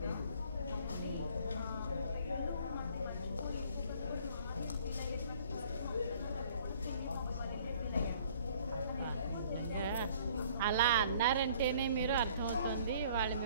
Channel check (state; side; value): inverted; both; correlation -0.56